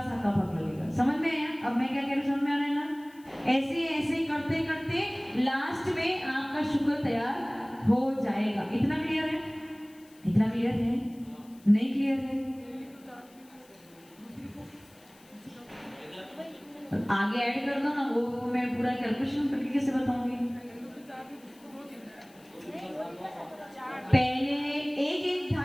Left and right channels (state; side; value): noise; left; hiss, 27 dB below the sound